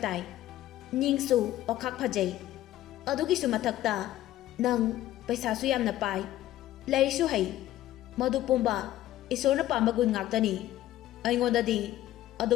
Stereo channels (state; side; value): quieter; right; 14.1 dB